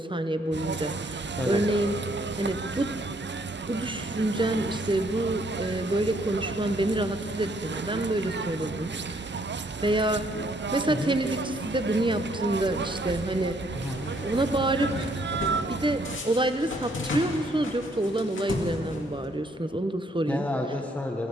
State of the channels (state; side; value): normal; both; correlation 0.67